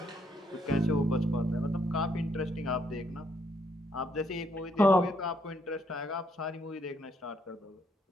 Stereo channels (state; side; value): normal; both; correlation 0.72